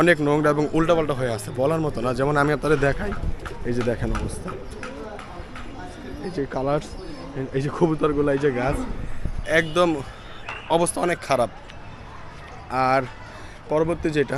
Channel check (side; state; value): both; identical; correlation 1.00